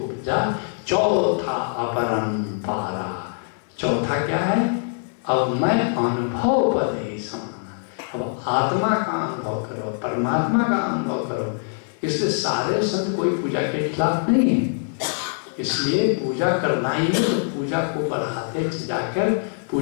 उपजा, चौथा अपरंपारा। चौथा क्या है? अब मैं अनुभव पद ही समाना। अब आत्मा का अनुभव करो, परमात्मा का अनुभव करो। इसलिए सारे संत कोई पूजा के खिलाफ नहीं है, इसलिए पूजा करना ही है, तो पूजा को बढ़ाते जाकर,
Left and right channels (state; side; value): silent; right; 57 dB below the other